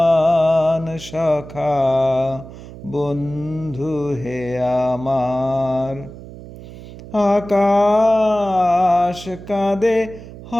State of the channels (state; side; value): noise; right; hum, 15 dB below the sound